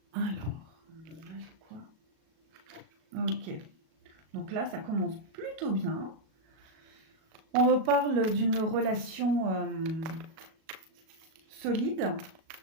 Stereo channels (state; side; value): late; left; 37 ms